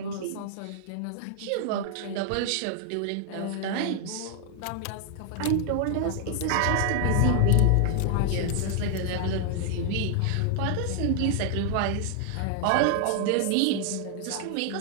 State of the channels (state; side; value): different; both; correlation 0.00